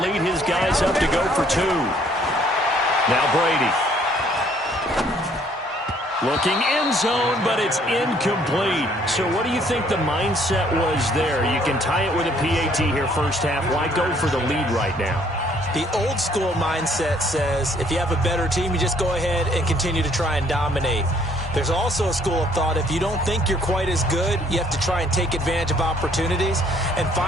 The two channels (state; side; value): normal; both; correlation 0.63